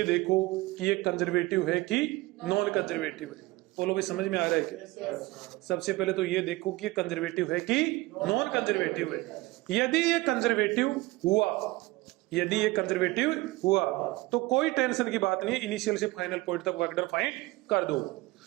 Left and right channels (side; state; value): left; quieter; 20.6 dB